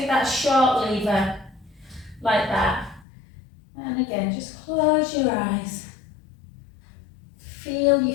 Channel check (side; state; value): right; drops out; at 3.1 s